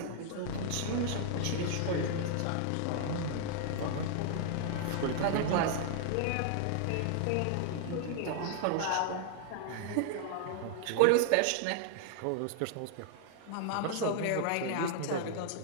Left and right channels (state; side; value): different; both; correlation 0.00